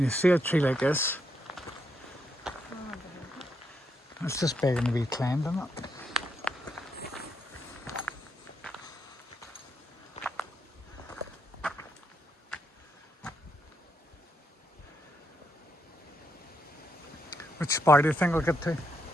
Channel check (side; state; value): both; normal; correlation 0.79